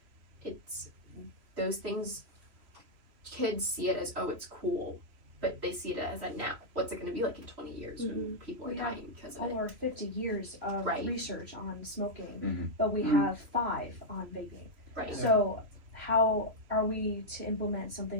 it's those things, kids see it as, oh, it's cool, but they see it as a now. What's it going to be like in 20 years when people are dying because of it? Over 50 years of research on smoking, but we have 5 on vaping. Right. So how are we to implement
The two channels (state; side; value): late; left; 3.1 ms